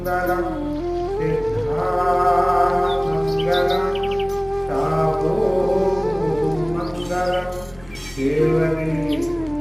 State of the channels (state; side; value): noise; right; rumble, 23 dB below the sound